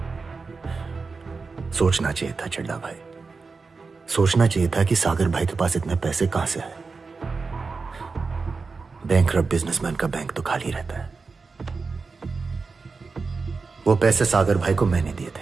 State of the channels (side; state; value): left; quieter; 4.4 dB